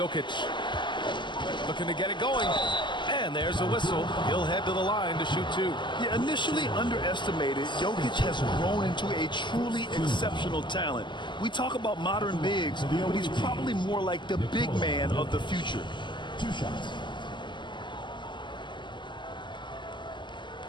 Looking to get it going. And there's a whistle. He'll head to the line to shoot 2. Yeah, initially underestimated, Jokic has grown into a truly exceptional talent. We talk about modern bigs, but he's probably more like the big man of the future. 2 shots.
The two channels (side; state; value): right; late; 0.22 ms